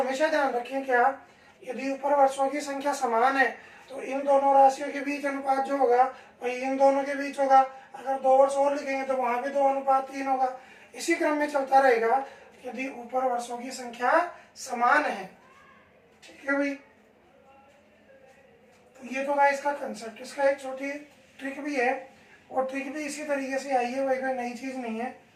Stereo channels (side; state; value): both; identical; correlation 1.00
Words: ध्यान रखें क्या, यदि ऊपर वर्षों की संख्या समान है तो इन दोनों राशियों के बीच अनुपात जो होगा वही इन दोनों के बीच होगा। अगर 2 वर्ष और लिखेंगे तो वहाँ भी 2:3 होगा। इसी क्रम में चलता रहेगा यदि ऊपर वर्षों की संख्या समान है। ठीक है भाई, तो ये तो था इसका कंसेप्ट। इसका एक छोटी ट्रिक भी है, और ट्रिक भी इसी तरीके से आई है भाई, कोई नई चीज़ नहीं है,